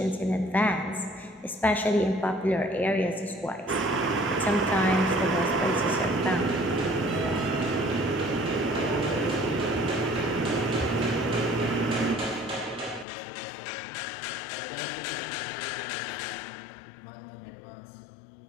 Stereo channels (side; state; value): right; drops out; at 13.1 s